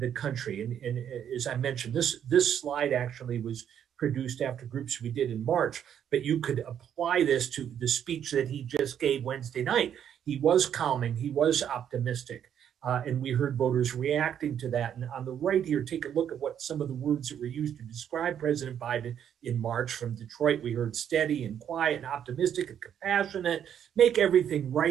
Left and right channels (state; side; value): quieter; left; 9.3 dB